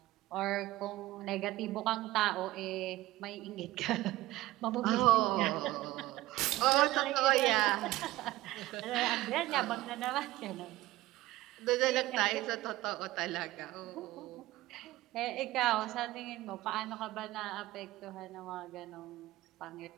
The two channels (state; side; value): quieter; left; 17.4 dB